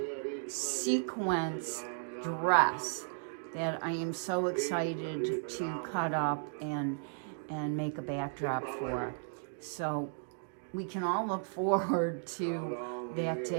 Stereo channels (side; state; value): left; silent; digital silence